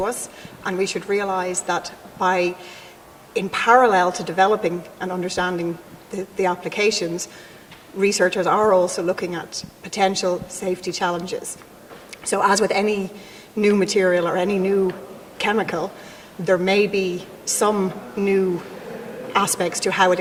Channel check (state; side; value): identical; both; correlation 1.00